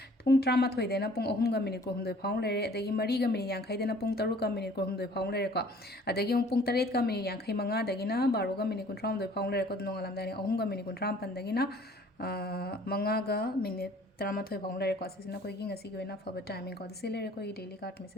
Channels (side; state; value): both; normal; correlation 0.53